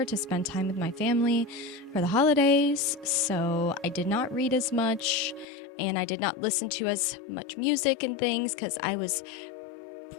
to spend time with my family for the holidays, so I did not read as much and I did not listen to as much music and things because I was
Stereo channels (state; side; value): drops out; right; at 5.5 s